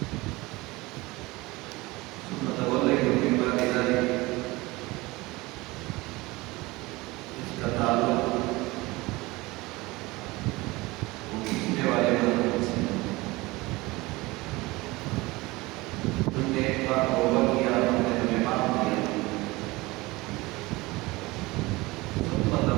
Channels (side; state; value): left; quieter; 21.7 dB